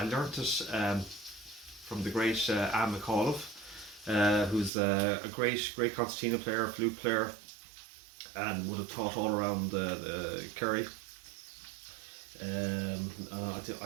learnt it from the great Anne McAuliffe, who's a great concertina player, flute player, and would have taught all around the Kerry.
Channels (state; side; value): drops out; left; at 4.7 s